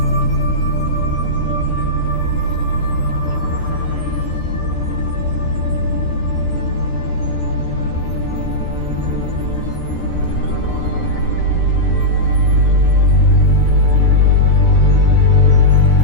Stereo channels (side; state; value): right; late; 13 ms